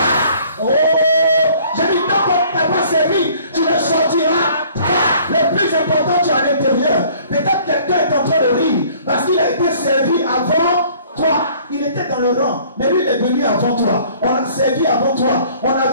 Oh, j'ai dit tant qu'on n'est pas servi, tu ne sortiras pas. Le plus important, tu es à l'intérieur. Peut-être quelqu'un est en train de rire parce qu'il a été servi avant toi. Il était dans le rang, mais lui il est venu avant toi. On l'a servi avant toi. On a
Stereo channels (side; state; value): both; inverted; correlation -0.55